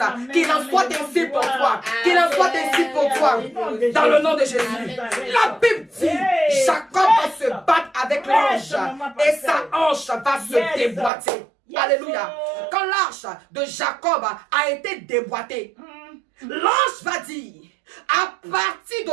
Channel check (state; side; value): drops out; left; at 11.1 s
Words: Qu'il en soit ainsi pour toi. Qu'il en soit ainsi pour toi. Dans le nom de Jésus. La Bible dit, Jacob va se battre avec l'ange et sa hanche va se déboîter. Alléluia. Quand l'arche de Jacob a été déboîtée, l'ange va dire, à partir